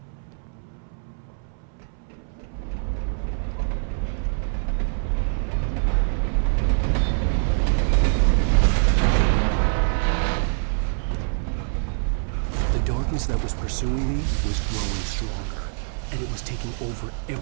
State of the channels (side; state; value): left; silent; 61 dB below the other